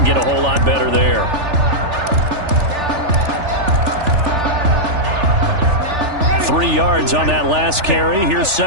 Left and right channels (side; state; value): left; late; 3.4 ms